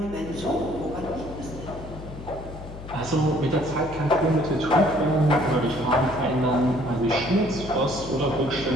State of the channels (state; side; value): noise; left; hum, 13 dB below the sound